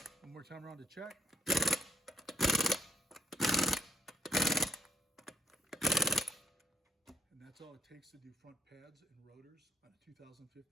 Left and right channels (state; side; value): normal; both; correlation 0.72